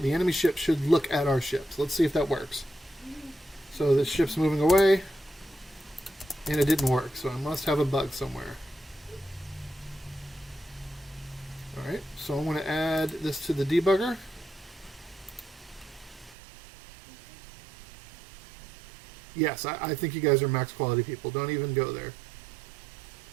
the enemy ship should look at our ship. So let's see if that works. So the ship's moving away, and it didn't work. So I must have a bug somewhere. All right. So I'm going to add this to the debugger. Yes, I think you guys are max quality people. Don't even go there.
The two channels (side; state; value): left; drops out; at 16.4 s